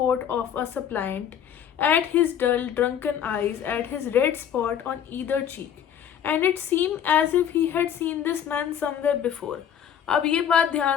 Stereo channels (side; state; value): right; quieter; 9.0 dB